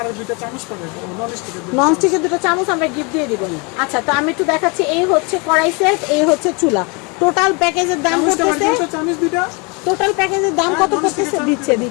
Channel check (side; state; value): right; quieter; 30.8 dB